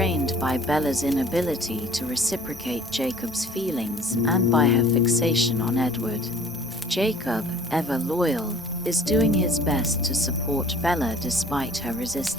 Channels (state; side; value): normal; both; correlation 0.52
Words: by Bella's inability to reciprocate Jacob's feelings and by her fixation on Edward. Jacob, ever loyal, is doing his best to support Bella despite her